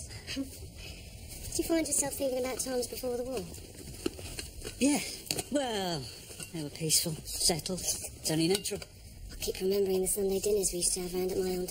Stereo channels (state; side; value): identical; both; correlation 1.00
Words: Did you find yourself thinking about times before the war? Yeah. Well, they were peaceful, settled. It's only natural. I keep remembering the Sunday dinners we used to have round at my old